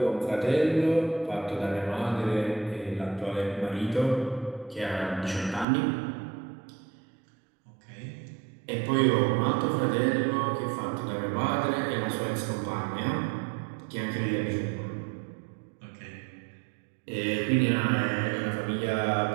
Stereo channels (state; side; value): drops out; left; at 5.7 s